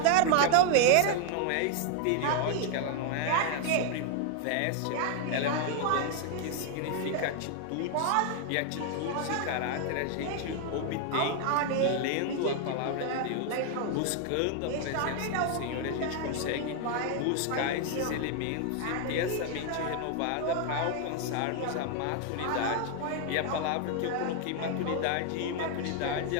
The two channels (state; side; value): different; both; correlation 0.00